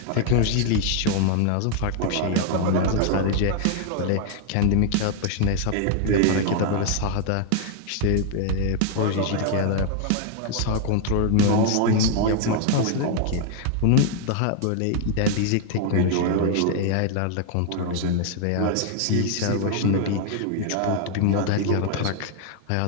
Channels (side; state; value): both; different; correlation 0.00